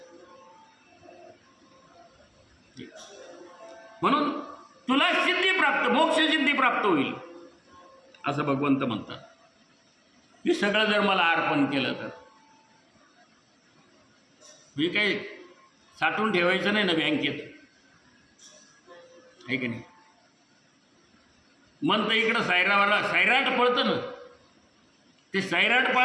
म्हणून तुला सिद्धी प्राप्त, मोक्ष सिद्धी प्राप्त होईल असं भगवंत म्हणतात. हे सगळं जर मला अर्पण केलं तर हे काही साठवून ठेवायचं नाही ना बँकेत, आहे की नाही. मन तर इकडं सैराट पळतं ना, ते सैराट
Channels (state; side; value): identical; both; correlation 1.00